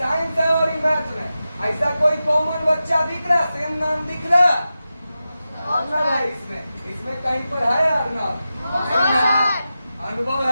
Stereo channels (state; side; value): inverted; both; correlation -0.92